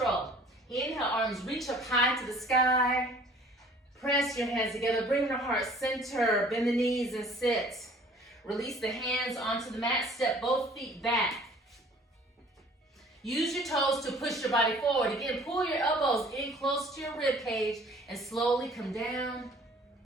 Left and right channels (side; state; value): both; normal; correlation 0.53